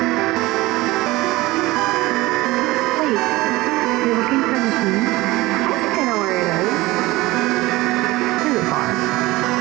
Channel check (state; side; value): quieter; left; 19.9 dB